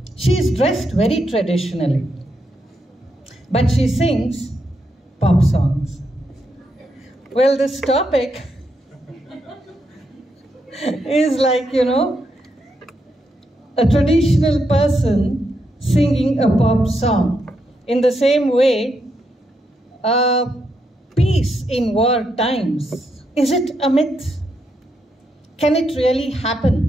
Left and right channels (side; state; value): both; normal; correlation 0.81